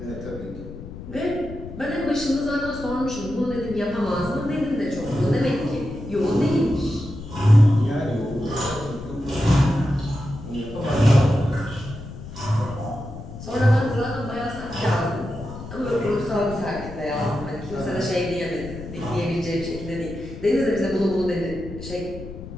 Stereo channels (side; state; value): left; noise; rumble, 12 dB below the sound